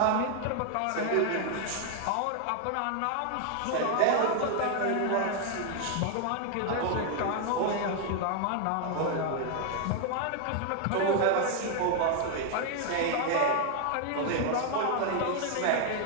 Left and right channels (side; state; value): both; different; correlation 0.00